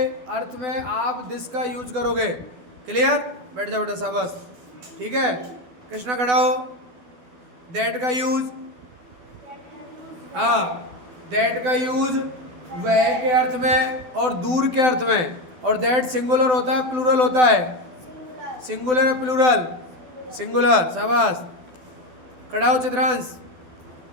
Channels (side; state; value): left; late; 12 ms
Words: अर्थ में आप दिस का यूज करोगे। क्लियर? बैठ जाओ बेटा, शाबाश। ठीक है, कृष्णा खड़ा हो। दैट का यूज, हाँ, दैट का यूज वह के अर्थ में और दूर के अर्थ में। और दैट सिंगुलर होता है प्लूरल होता है? सिंगुलर है प्लूरल? सिंगुलर, शाबाश। खड़ा हो चित्रांश।